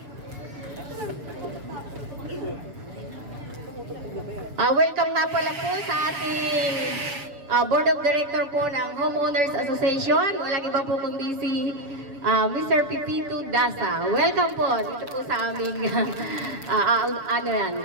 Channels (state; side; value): late; left; 6.9 ms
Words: Welcome nga pala po sa ating Board of Director po ng Homeowners Association. Walang iba po kundi si Mr. Pipito Dasa. Welcome po dito po sa aming